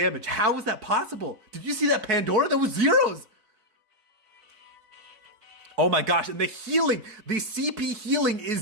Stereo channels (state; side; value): late; left; 4.6 ms